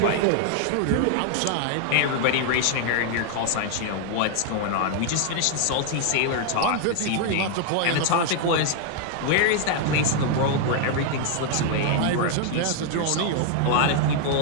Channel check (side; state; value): both; different; correlation 0.00